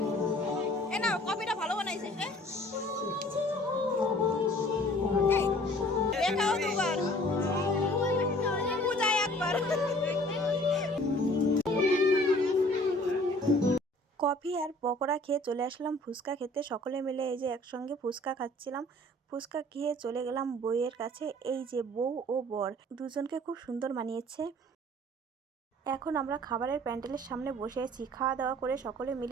কফিটা ভালো বানাইছে কফি আর পকোড়া খেয়ে চলে আসলাম ফুচকা খেতে। সকলে মিলে এই যে একসঙ্গে ফুচকা খাচ্ছিলাম। ফুচকা খেয়ে চলে গেলাম বউয়ের কাছে। এই যে বউ ও বর দুজনকে খুব সুন্দর মানিয়েছে। এখন আমরা খাবারের প্যান্ডেলের সামনে বসে আছি। খাওয়া দাওয়া করে সকলে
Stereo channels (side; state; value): both; normal; correlation 0.52